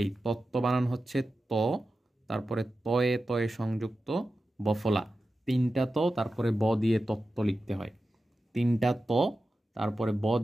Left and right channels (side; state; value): both; normal; correlation 0.92